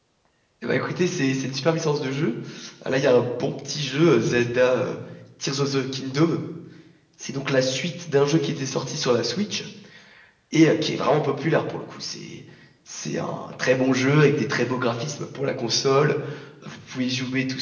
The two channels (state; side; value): identical; both; correlation 1.00